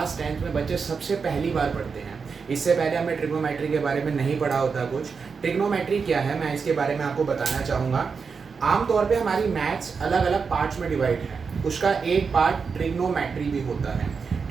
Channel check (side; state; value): left; quieter; 5.4 dB